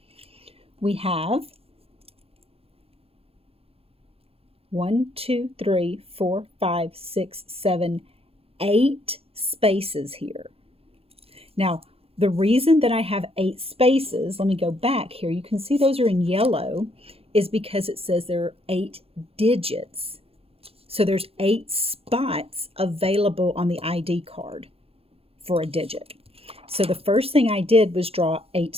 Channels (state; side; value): late; left; 0.28 ms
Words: We have 1, 2, 3, 4, 5, 6, 7, 8 spaces here. Now, the reason that I have 8 spaces, let me go back here. You can see those are in yellow, is because it says there are 8 digits. So there's 8 spots available on the ID card for a digit. So the first thing I did was draw 8